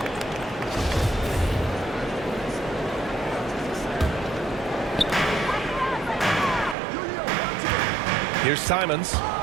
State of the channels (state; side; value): drops out; left; at 6.8 s